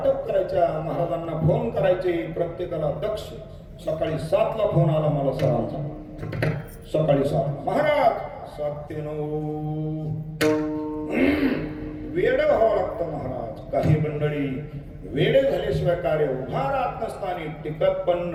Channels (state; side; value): identical; both; correlation 1.00